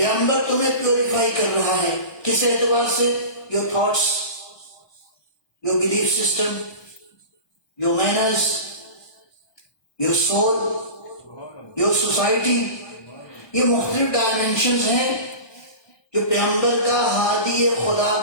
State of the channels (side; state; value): right; late; 1.2 ms